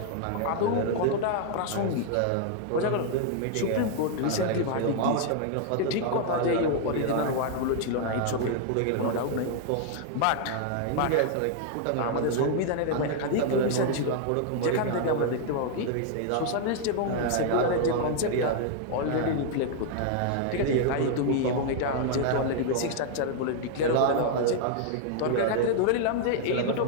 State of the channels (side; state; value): both; different; correlation 0.00